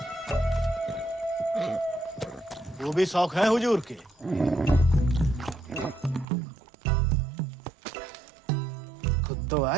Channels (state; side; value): drops out; left; at 6.2 s